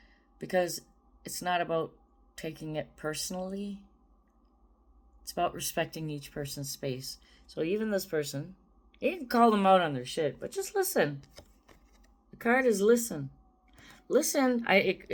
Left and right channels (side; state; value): both; identical; correlation 1.00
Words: because it's not about taking it personally. It's about respecting each person's space. So even this person, you can call them out on their shit, but just listen. The card is listen. Listen.